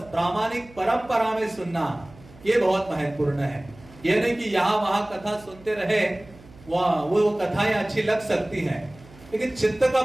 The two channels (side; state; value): right; noise; hum, 22 dB below the sound